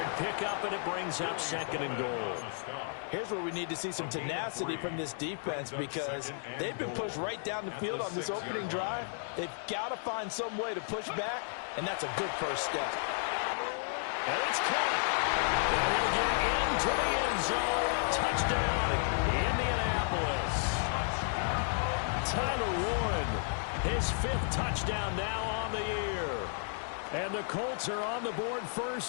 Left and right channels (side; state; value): right; silent; digital silence